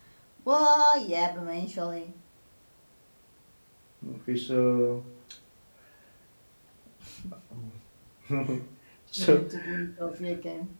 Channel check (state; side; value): inverted; both; correlation -1.00